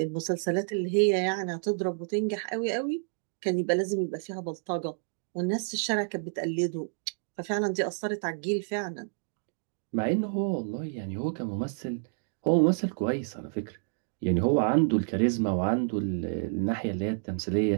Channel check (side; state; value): left; silent; digital silence